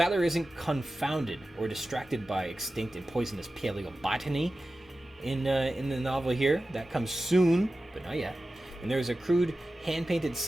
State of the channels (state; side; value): normal; both; correlation 0.94